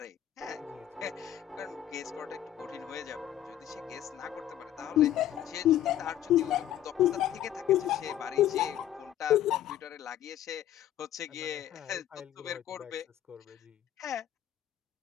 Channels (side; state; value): right; quieter; 11.6 dB